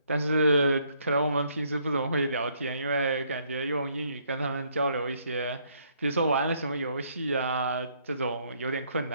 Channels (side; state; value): both; inverted; correlation -0.69